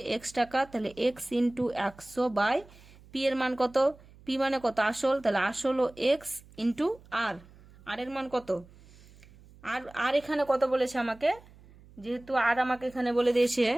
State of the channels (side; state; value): right; noise; hum, 24 dB below the sound